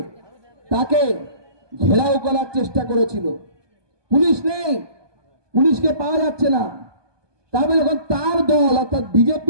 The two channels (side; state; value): left; late; 1.2 ms